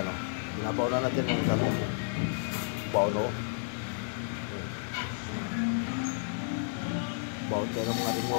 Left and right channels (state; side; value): silent; right; digital silence